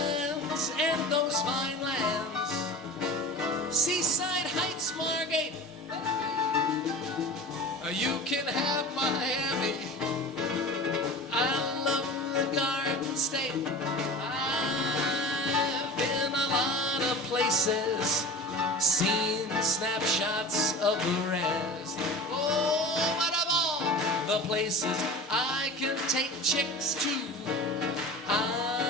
and those fine lands, Seaside Heights, Margate. You can have Miami. I love the Garden State. I've been a lot of places, seen snapshots of the rest. Oh, but of all the places I can take chicks to,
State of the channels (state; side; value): normal; both; correlation 0.35